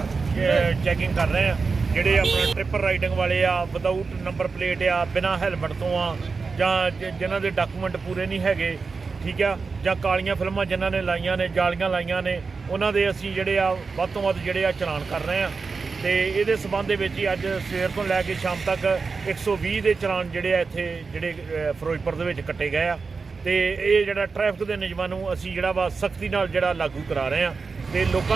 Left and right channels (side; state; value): left; quieter; 4.6 dB